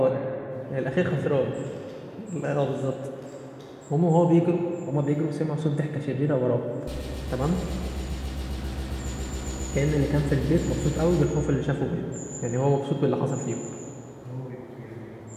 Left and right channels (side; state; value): both; identical; correlation 1.00